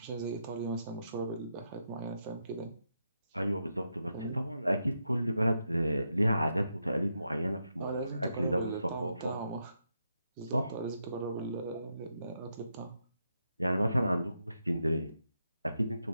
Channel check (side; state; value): both; inverted; correlation -0.83